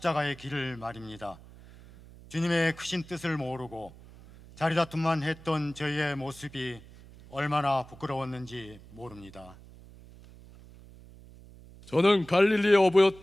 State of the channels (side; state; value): right; noise; hum, 20 dB below the sound